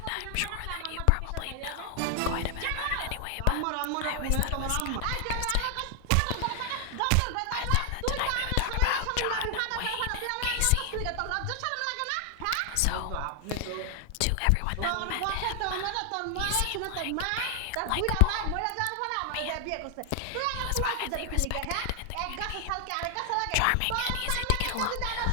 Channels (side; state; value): both; different; correlation 0.00